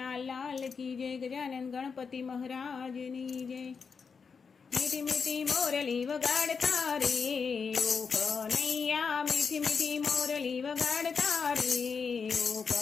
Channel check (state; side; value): quieter; right; 5.6 dB